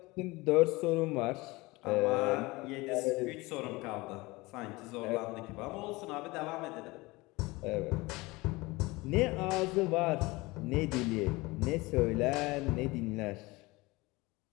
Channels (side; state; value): right; quieter; 22.5 dB